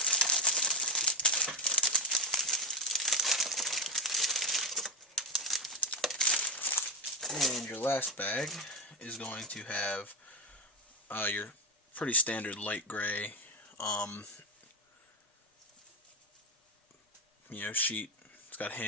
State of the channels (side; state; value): both; normal; correlation 0.10